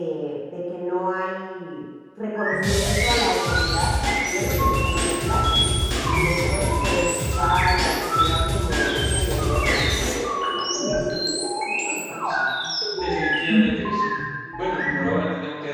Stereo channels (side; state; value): both; identical; correlation 1.00